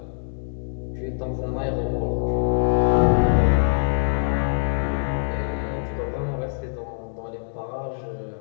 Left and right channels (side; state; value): right; silent; digital silence